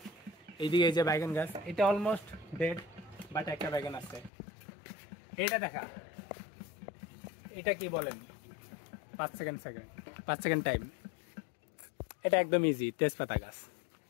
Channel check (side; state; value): right; drops out; at 4.3 s